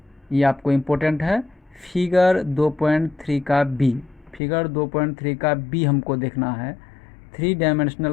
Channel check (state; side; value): drops out; right; at 4.4 s